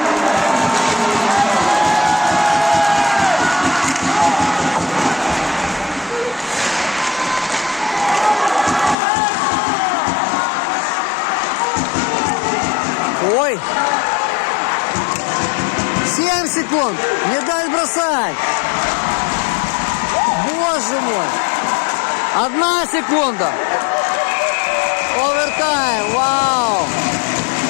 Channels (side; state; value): right; drops out; at 9.0 s